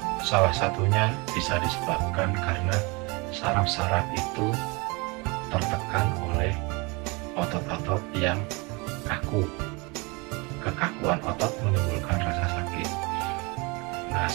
salah satunya bisa disebabkan karena saraf-saraf itu tertekan oleh otot-otot yang kaku. Kekakuan otot menimbulkan rasa sakit. Nah,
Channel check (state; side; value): quieter; left; 27.7 dB